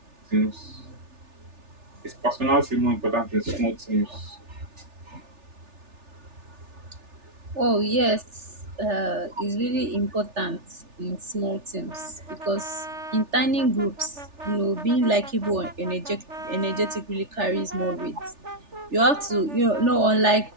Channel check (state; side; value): late; left; 3.4 ms